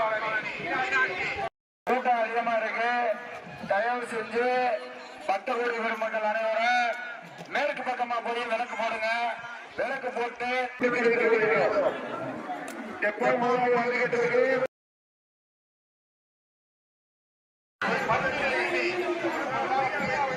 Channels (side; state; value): both; identical; correlation 1.00